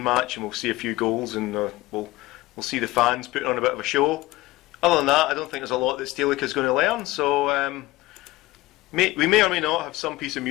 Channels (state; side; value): quieter; right; 19.0 dB